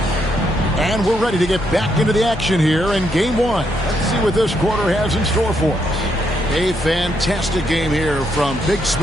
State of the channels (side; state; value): both; normal; correlation 0.77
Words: And we're ready to get back into the action here in game 1. Let's see what this quarter has in store for us. A fantastic game here from Big